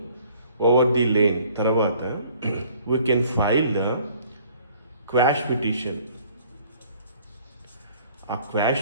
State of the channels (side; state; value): both; inverted; correlation -0.57